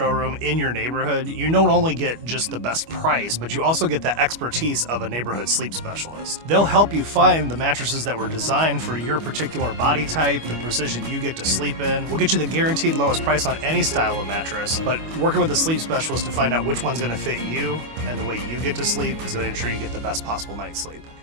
in your neighborhood, you don't only get just the best price, but you also get the expertise of a neighborhood sleep specialist. They'll help you find the mattresses that were designed for your particular body type, the precision you get to sleep in. We'll get you the guaranteed lowest price on any style of mattress, but working with a sleep specialist to find out which one's going to fit you and the way you get to sleep is going to ensure you get the best possible night's sleep.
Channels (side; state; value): left; late; 25 ms